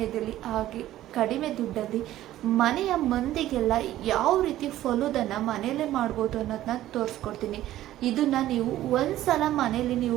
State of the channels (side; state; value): left; quieter; 14.0 dB